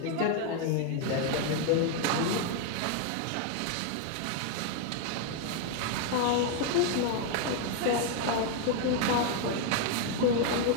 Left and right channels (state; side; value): different; both; correlation 0.01